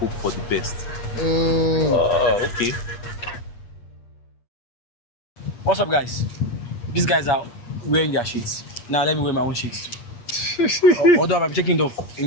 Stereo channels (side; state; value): right; late; 8.4 ms